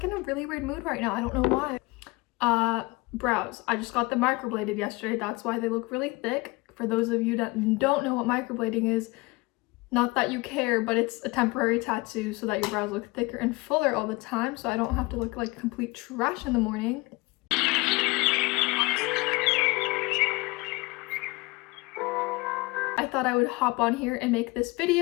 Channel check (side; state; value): right; quieter; 24.1 dB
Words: in a really weird mood right now. I don't know why. Brows. I just got them microbladed yesterday. That's why they look really thick. For those of you that don't know what microblading is, not that you care, but it's a temporary tattoo so that your brows look thicker and fuller all the time, so I don't have to look like complete trash in the morning. I thought I would hop on here and make this